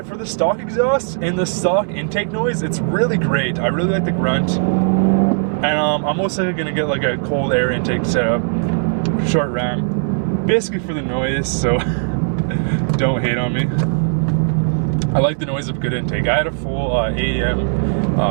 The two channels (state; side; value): silent; left; 67 dB below the other